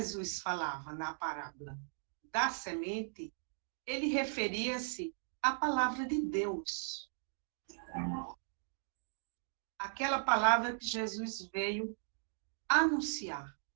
falava na parábola da semente, ele referia-se à palavra de Deus. Aquela palavra que Jesus veio anunciar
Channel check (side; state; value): left; silent; digital silence